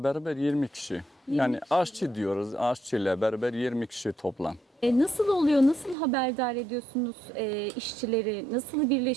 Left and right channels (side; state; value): left; drops out; at 6.0 s